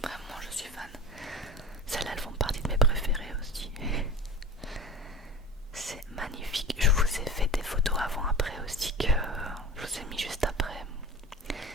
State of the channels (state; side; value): normal; both; correlation 0.32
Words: vraiment je suis fan. Celles-là, elles font partie de mes préférées aussi. C'est magnifique. Je vous ai fait des photos avant-après aussi que je vous ai mis juste après.